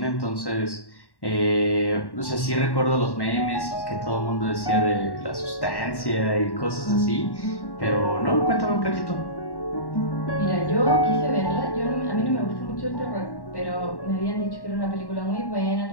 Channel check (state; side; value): late; right; 1.1 ms